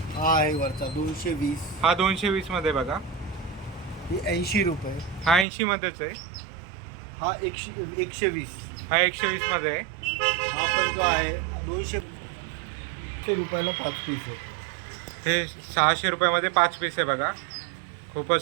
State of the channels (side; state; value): left; drops out; at 5.5 s